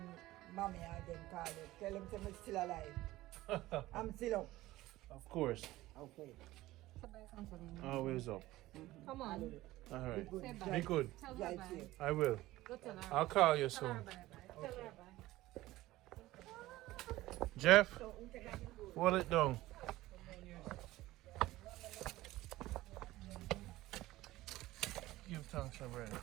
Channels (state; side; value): quieter; left; 17.1 dB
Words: mommy and them call you, tell them I'm still alive. I'm still up. Of course, Okay. always up. Come on. All right, Say bye. be good. Tell her Drive bye. safe. I will. Go tell her. I'll call you Tell her soon. bye bye. Tell her bye. Jeff, hold it down. Give thanks, my brother.